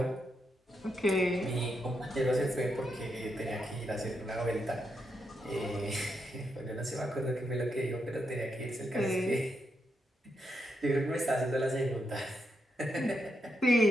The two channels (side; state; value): both; normal; correlation 0.82